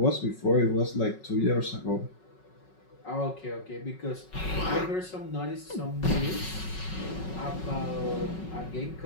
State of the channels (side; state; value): right; late; 5.4 ms